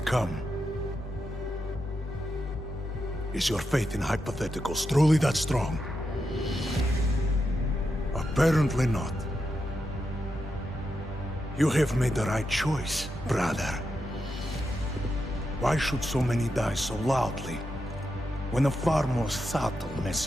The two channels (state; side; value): normal; both; correlation 0.86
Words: come? Is your faith in hypotheticals truly that strong? Apparently not. You have made the right choice, brother. Why should so many die so loudly, when a far more subtle